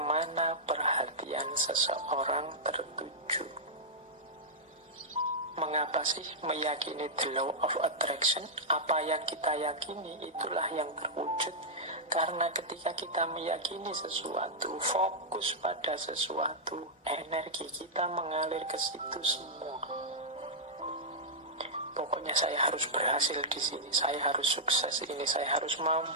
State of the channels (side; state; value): both; normal; correlation -0.08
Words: perhatian seseorang tertuju. Mengapa sih meyakini the law of attraction? Apa yang kita yakini itulah yang terwujud. Karena ketika kita meyakini sesuatu, fokus pada sesuatu, energi kita mengalir ke situ semua. Pokoknya saya harus berhasil di sini, saya harus sukses ini, saya harus